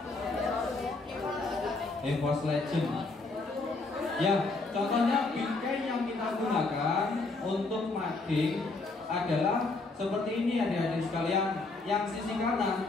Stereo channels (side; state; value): right; quieter; 3.5 dB